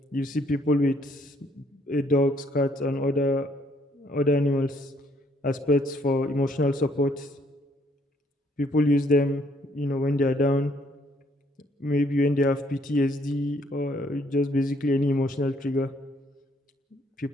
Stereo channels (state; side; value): normal; both; correlation 0.67